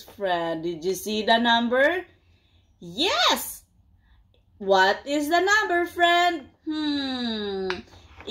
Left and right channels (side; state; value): both; identical; correlation 1.00